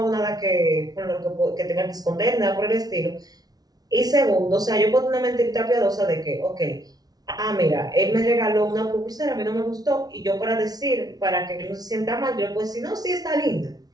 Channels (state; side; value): late; left; 0.19 ms